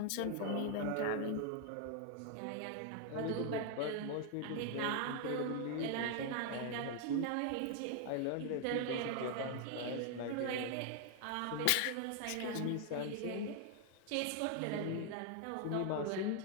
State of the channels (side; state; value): both; different; correlation 0.00